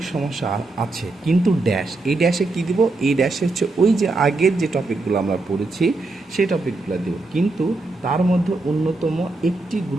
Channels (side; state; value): left; quieter; 3.2 dB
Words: সমস্যা আছে, কিন্তু ড্যাশ, এই ড্যাশে কী দিব? এই ড্যাশে হচ্ছে ওই যে আগের যে টপিকগুলো আমরা পড়েছি সেই টপিকগুলো দেব, কিন্তু তার মধ্যে অন্যতম একটি